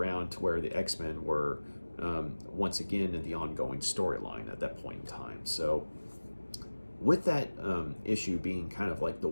to where the X-Men were once again in the ongoing storyline at that point in time. So with that issue being kind of like the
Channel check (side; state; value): both; inverted; correlation -1.00